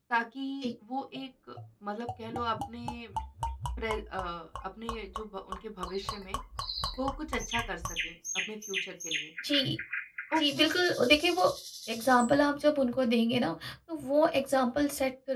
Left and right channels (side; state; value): both; identical; correlation 1.00